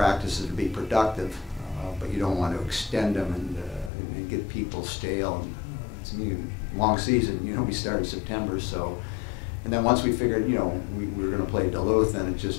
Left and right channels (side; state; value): right; drops out; at 3.9 s